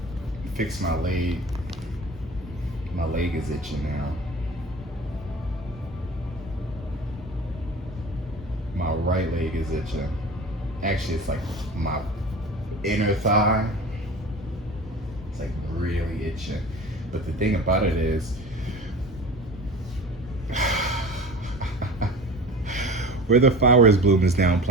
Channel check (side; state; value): both; normal; correlation 0.37